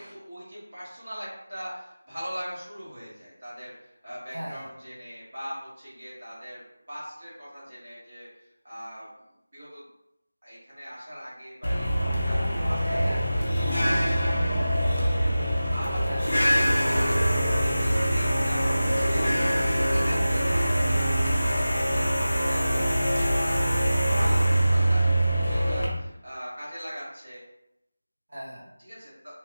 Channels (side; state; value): both; inverted; correlation -0.95